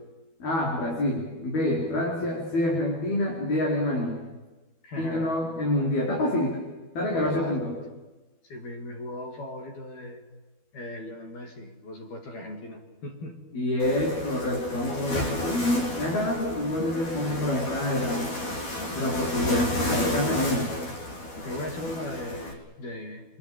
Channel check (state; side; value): late; right; 12 ms